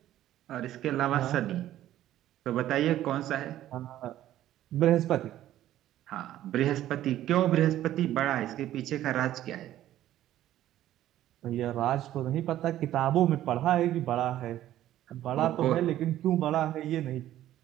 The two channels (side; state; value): left; quieter; 13.1 dB